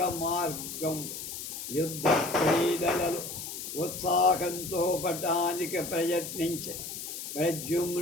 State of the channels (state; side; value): noise; left; hiss, 8 dB below the sound